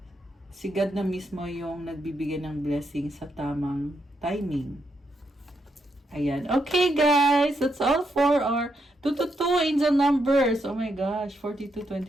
si God na mismo yung nagbibigay ng blessing sa tamang timing. Ayan. Okay, guys. That's all for our 222 angel numbers. Oh my gosh.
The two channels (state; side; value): normal; both; correlation 0.80